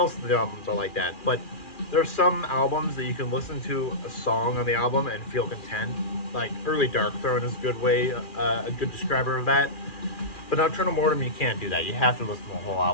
of the albums are like that, but there are some albums that you can listen to a song on the album and feel content. Like Early Darkthrone is a good way, a good describer of that. But Nocturnal Mortem, you can't do that. You have to listen to the whole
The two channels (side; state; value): right; late; 2.4 ms